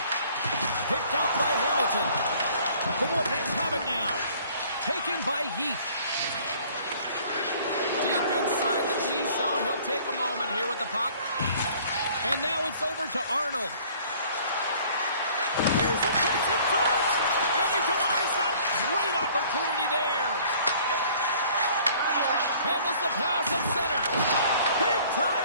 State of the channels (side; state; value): both; inverted; correlation -0.54